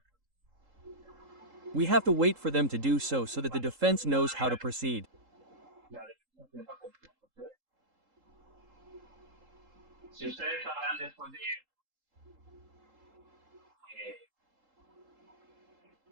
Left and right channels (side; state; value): left; late; 3.8 ms